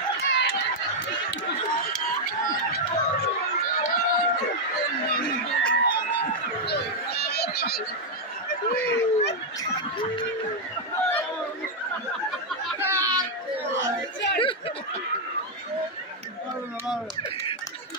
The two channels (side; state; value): both; normal; correlation -0.02